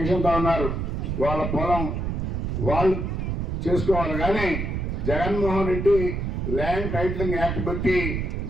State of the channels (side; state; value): right; noise; rumble, 2 dB below the sound